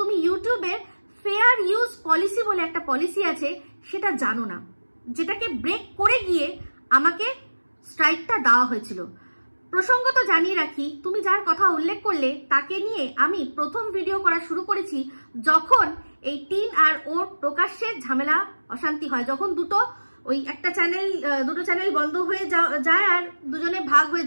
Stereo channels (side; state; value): both; inverted; correlation -1.00